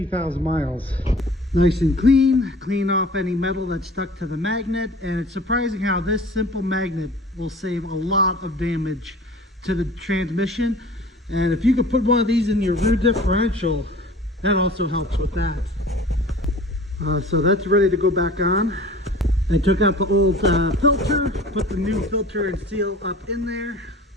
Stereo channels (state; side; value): normal; both; correlation 0.43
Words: miles. Nice and clean off any metal that's stuck to the magnet, and it's surprising how this simple magnet will save a lot of damage to the transmission. And if you could put one of these in your rear differential, that also helps with that. So that's ready to go back on. I took out the old filter, put the new filter and seal up in there.